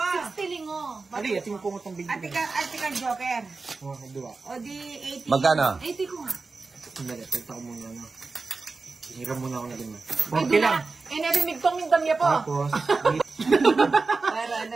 60 lingo. Ali, ating mo pumutong bigyan. Ate ka Joker. Oh, dua. O di 80. Magkano? 80 ko nga. Sandali, tagta ko muna ano. Hiram muna ako na din. Ay, 40 lang. Eh, narinig tong yung damya po. Tapos, Para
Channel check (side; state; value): left; quieter; 4.0 dB